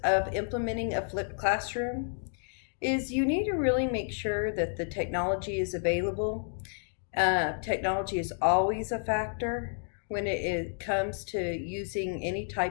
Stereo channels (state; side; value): silent; right; digital silence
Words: of implementing a flipped classroom. is you need to really make sure that the technology is available. Technology is always a factor when it comes to using any